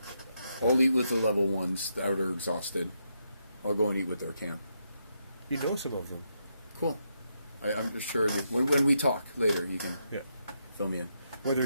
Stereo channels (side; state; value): both; inverted; correlation -0.80